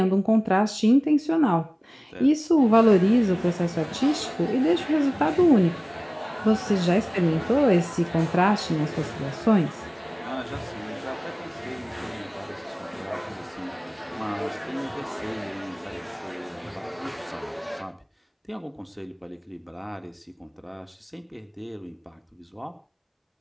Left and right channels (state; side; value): identical; both; correlation 1.00